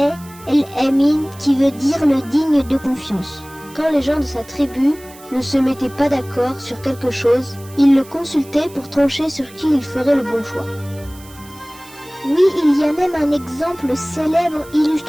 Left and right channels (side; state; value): right; noise; hiss, 22 dB below the sound